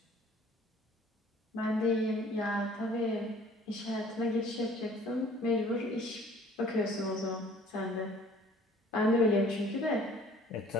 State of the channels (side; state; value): both; normal; correlation 0.53